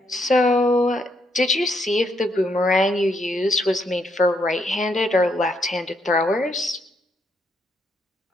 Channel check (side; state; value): both; normal; correlation 0.76